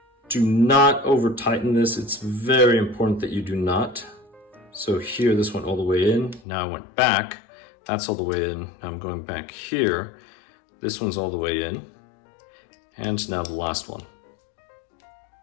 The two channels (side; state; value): right; drops out; at 6.4 s